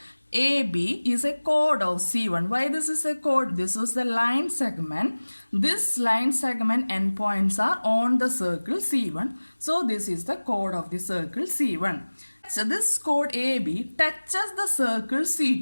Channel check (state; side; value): inverted; both; correlation -1.00